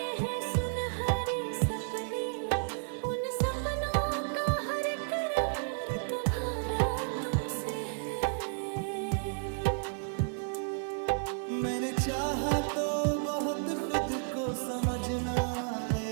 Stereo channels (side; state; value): left; silent; 56 dB below the other